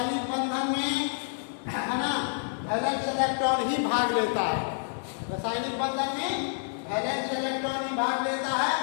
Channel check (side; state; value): right; silent; 59 dB below the other